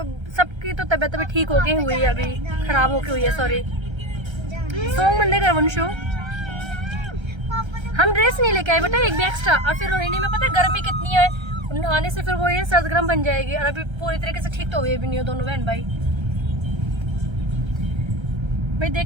सबकी तो तबीयत अभी ठीक होके हुई है, अभी खराब होके हुई है। सॉरी सॉन्ग बंदे कर वंशु। हम ड्रेस नहीं लेके आए बेटा, एक भी एक्स्ट्रा। और फिर रोहिणी में पता है गर्मी कितनी है, नहाने से फिर वो ये सर्द गर्म बन जाएगी। और अभी पूरी तरीके से ठीक तो हुए भी नहीं हो दोनों बहन भाई। भाई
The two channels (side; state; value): left; late; 1.3 ms